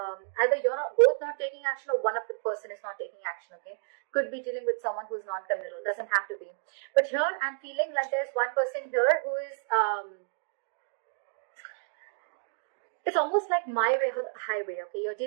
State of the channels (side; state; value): left; quieter; 39.7 dB